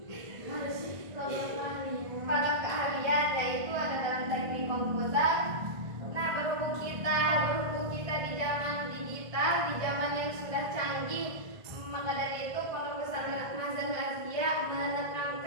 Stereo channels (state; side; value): late; left; 1.5 ms